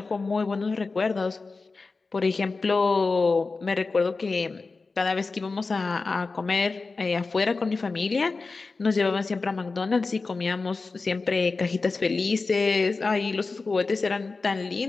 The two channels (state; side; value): quieter; right; 4.0 dB